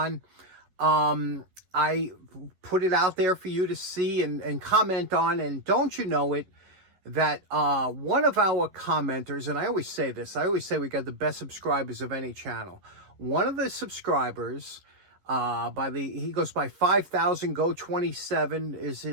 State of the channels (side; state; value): left; late; 11 ms